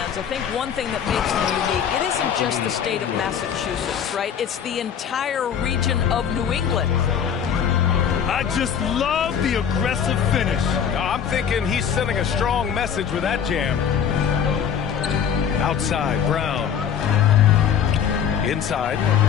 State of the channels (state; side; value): quieter; right; 8.1 dB